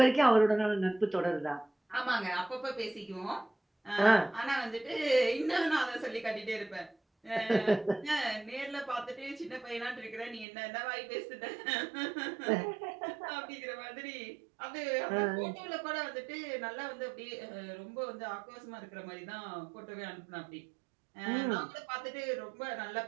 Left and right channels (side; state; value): left; drops out; at 10.5 s